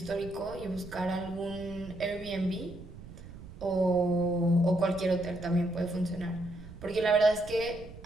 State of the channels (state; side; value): noise; right; rumble, 15 dB below the sound